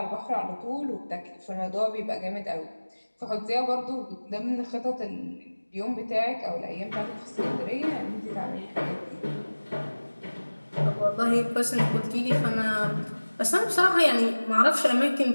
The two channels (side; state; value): both; inverted; correlation -1.00